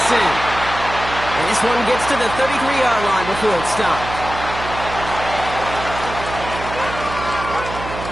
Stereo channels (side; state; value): right; noise; hum, 9 dB below the sound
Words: And this one gets to the 33-yard line before it stopped.